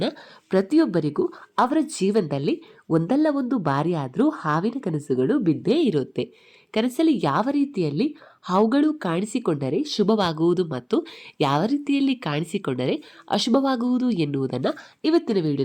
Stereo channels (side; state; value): both; identical; correlation 1.00